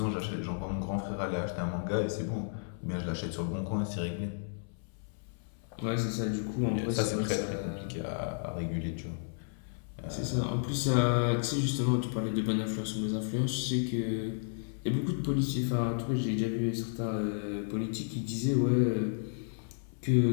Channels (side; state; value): right; silent; 55 dB below the other